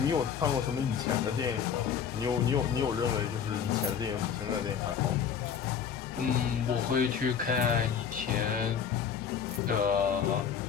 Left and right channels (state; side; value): quieter; right; 7.5 dB